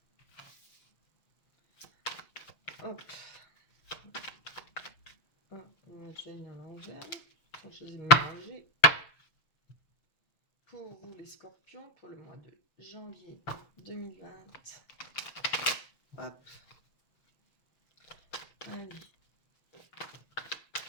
Hop. J'ai une à l'envers. Je les ai mélangés. Pour vous les scorpions, pour le mois de janvier 2020. Hop. Allez.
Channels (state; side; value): late; right; 6.8 ms